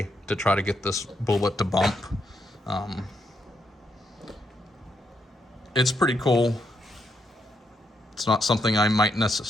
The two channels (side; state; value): both; normal; correlation 0.79